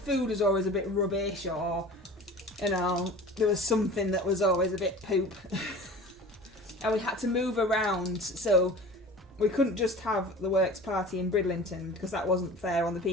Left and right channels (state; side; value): normal; both; correlation 0.39